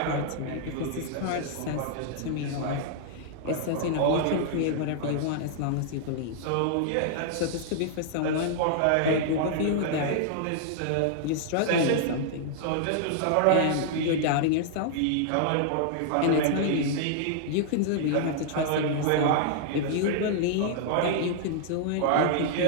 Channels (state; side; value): different; both; correlation -0.01